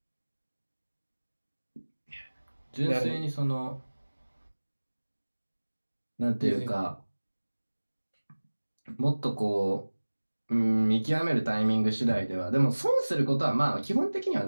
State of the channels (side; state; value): both; inverted; correlation -1.00